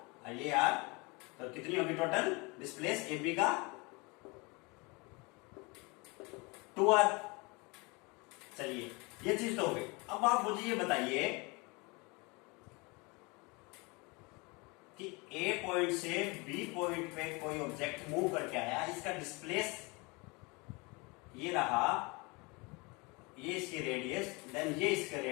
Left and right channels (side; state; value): right; quieter; 27.5 dB